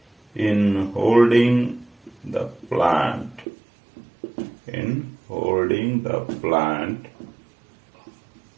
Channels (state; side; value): drops out; left; at 3.5 s